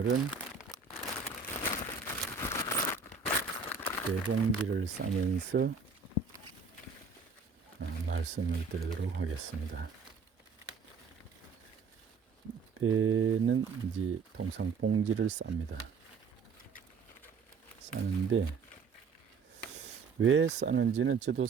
배봉지를 싸면서 말씀을 드리도록 하겠습니다. 배는 이제 통상 봉지를 쌉니다. 싸는데 왜 싸는지는 저도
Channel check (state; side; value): quieter; left; 5.0 dB